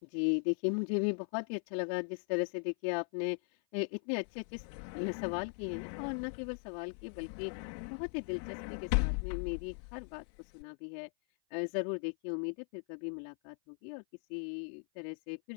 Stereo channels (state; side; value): silent; right; 52 dB below the other